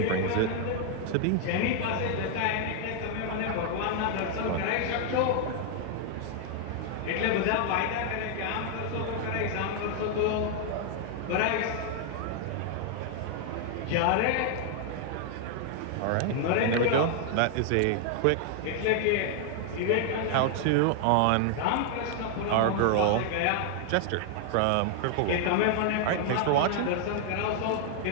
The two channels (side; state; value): both; different; correlation 0.00